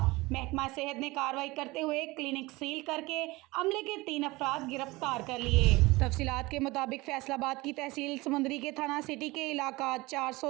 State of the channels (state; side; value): quieter; left; 21.8 dB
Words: महकमा सेहत ने कार्रवाई करते हुए क्लिनिक सील करके अमले के 3 अफराद गिरफ्तार कर लिए। तफसीलात के मुताबिक फैसलाबाद की तहसील समंदरी के थाना सिटी के इलाका